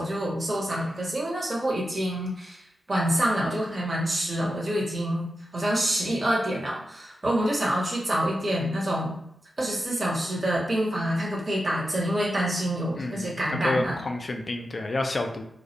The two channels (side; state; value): both; normal; correlation 0.89